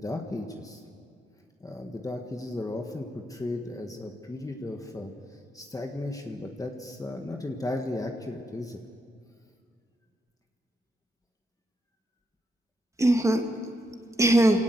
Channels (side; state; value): both; normal; correlation 0.80